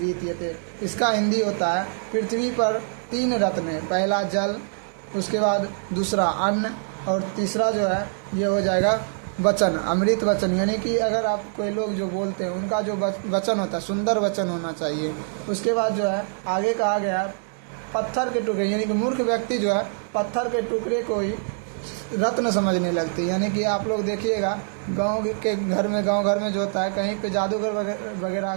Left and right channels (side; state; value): left; silent; digital silence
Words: इसका हिंदी होता है, पृथ्वी पर 3 रत्न है, पहला जल, उसके बाद दूसरा अन्न और तीसरा जो है ये हो जाएगा वचन, अमृत वचन। यानी कि अगर आप कोई लोग जो बोलते हैं उनका जो वचन होता है सुंदर वचन होना चाहिए। उसके बाद जो है आगे कहा गया है पत्थर के टुकड़े, यानी कि मूर्ख व्यक्ति जो है पत्थर के टुकड़े को ही रत्न समझने लगते हैं। यानी कि आप लोग देखिएगा गांव घर में जो होता है, कहीं पे जादूगर वगैरह